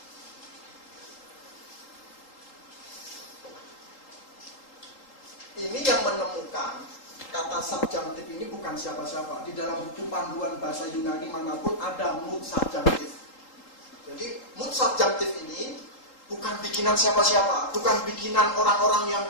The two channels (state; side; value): late; right; 3.8 ms